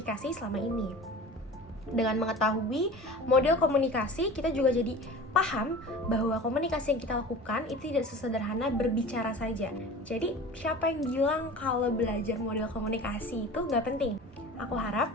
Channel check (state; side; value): normal; both; correlation 0.38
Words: selama ini. Dengan mengetahui model komunikasi, kita juga jadi paham bahwa komunikasi yang kita lakukan itu tidak sesederhana berbicara saja. Jadi, siapa yang bilang kalau belajar model komunikasi itu nggak penting? Aku harap